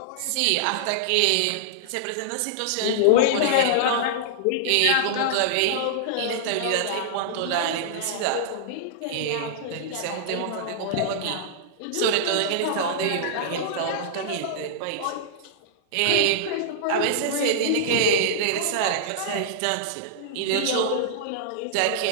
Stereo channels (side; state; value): both; different; correlation -0.02